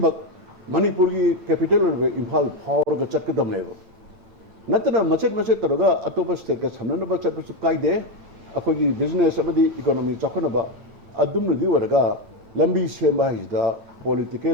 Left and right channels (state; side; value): late; left; 9.0 ms